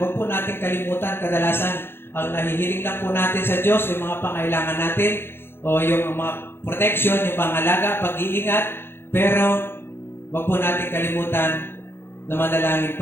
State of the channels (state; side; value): late; right; 0.11 ms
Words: po natin kalimutan, kadalasan ang nahihiling lang po natin sa Diyos, yung mga pangailangan natin, o yung mga protection, yung pangalaga, pag-iingat, pero wag po natin kalimutan na manalangin